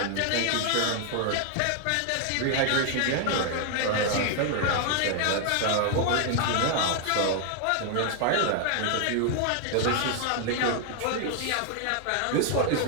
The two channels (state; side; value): different; both; correlation 0.00